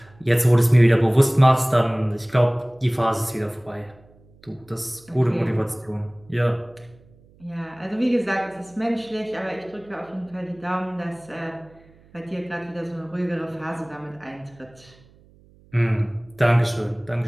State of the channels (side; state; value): right; noise; hum, 28 dB below the sound